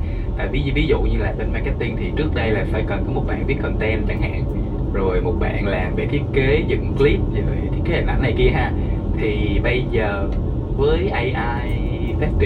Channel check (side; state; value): both; identical; correlation 1.00